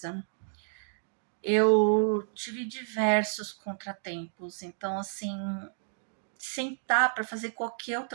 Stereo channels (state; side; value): silent; left; digital silence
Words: Eu tive diversos contratempos, então assim, sentar para fazer qualquer